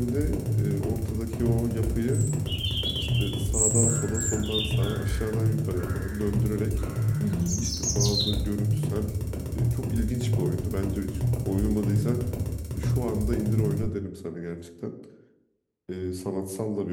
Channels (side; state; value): both; identical; correlation 1.00